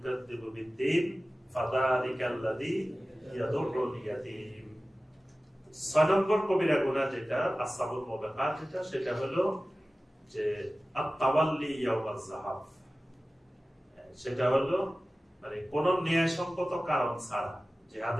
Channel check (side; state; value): both; normal; correlation 0.96